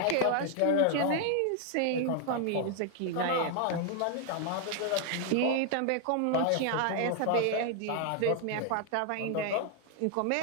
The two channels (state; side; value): different; both; correlation 0.00